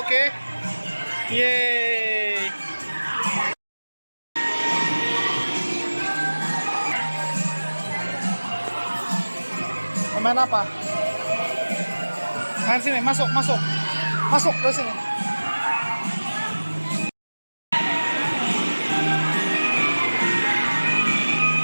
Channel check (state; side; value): inverted; both; correlation -1.00